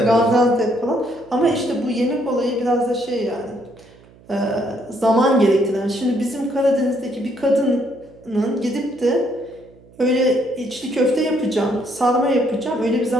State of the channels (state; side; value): noise; right; hum, 26 dB below the sound